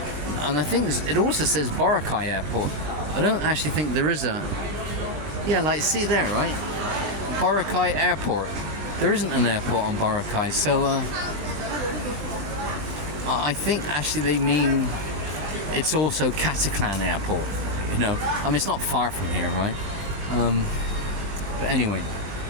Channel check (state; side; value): late; left; 20 ms